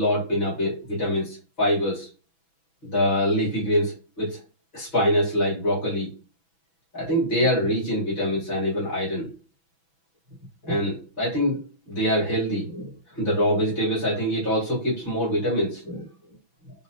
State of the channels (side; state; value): right; late; 6.1 ms